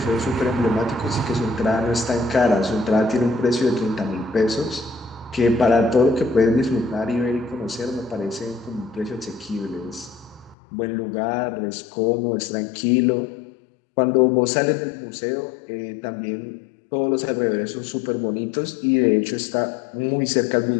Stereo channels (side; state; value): right; drops out; at 10.6 s